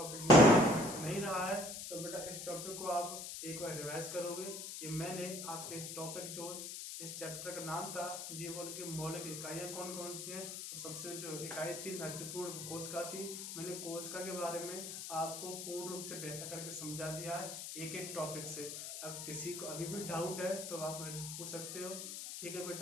नहीं रहा है तो बेटा इस टॉपिक को आप एक बार रिवाइज करोगे। ये मैंने आपके टॉपिक जो इस चैप्टर का नाम था जीवन की मौलिक इकाइयाँ कौन कौन सी हैं, तो सबसे जो इकाई थी महत्वपूर्ण कोशिका थी। मैंने कोशिका के बारे में आपको पूर्ण रूप से व्याख्या करके समझा दिया है एक एक टॉपिक से। अब किसी को अभी भी डाउट है तो आप मेरे से पूछ सकते हो। ठीक है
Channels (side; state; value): left; noise; hiss, 7 dB below the sound